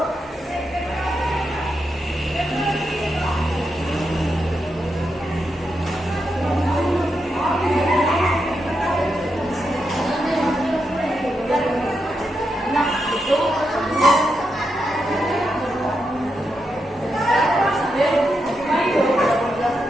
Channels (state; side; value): normal; both; correlation 0.85